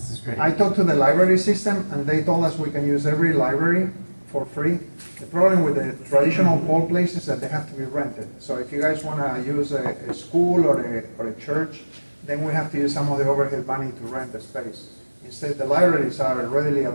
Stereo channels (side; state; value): both; inverted; correlation -1.00